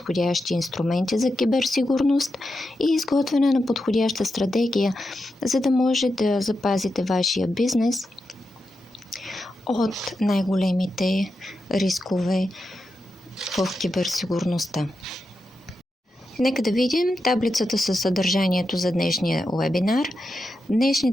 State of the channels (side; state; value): both; normal; correlation 0.88